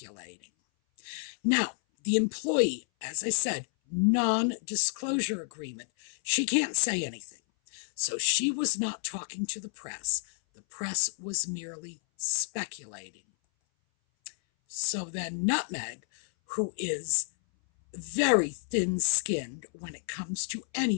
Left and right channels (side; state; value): right; silent; 58 dB below the other